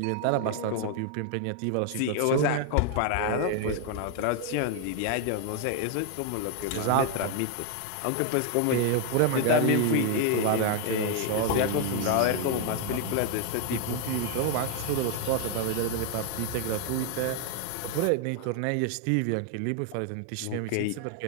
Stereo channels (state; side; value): different; both; correlation 0.00